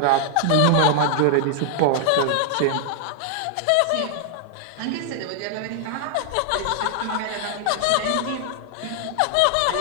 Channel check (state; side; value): different; both; correlation 0.00